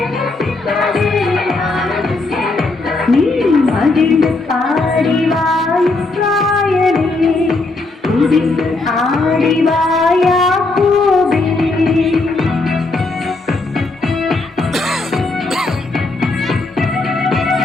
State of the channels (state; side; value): quieter; right; 3.3 dB